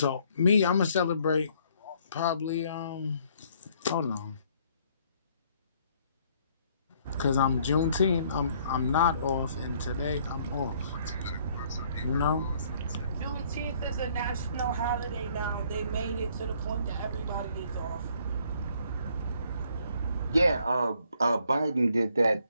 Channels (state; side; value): inverted; both; correlation -0.64